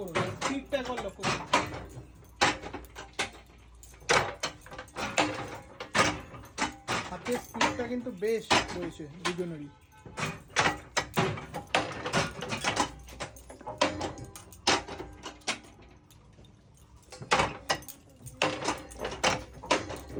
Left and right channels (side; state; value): both; identical; correlation 1.00